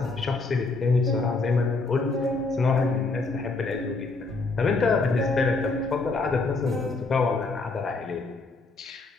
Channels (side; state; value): right; quieter; 3.7 dB